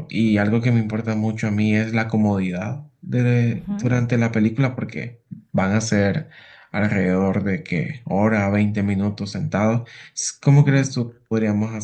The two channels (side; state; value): both; identical; correlation 1.00